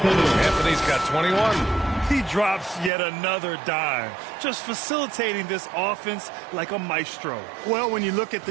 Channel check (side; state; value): left; drops out; at 2.9 s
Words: got 21. He drops yet another dime, just facilitating this offense like a maestro. Well, when you look at